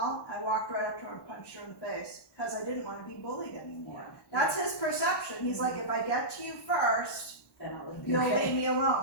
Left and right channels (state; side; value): late; right; 1.2 ms